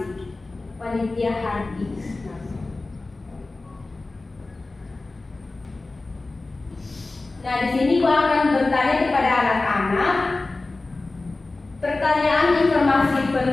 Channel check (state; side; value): quieter; right; 3.3 dB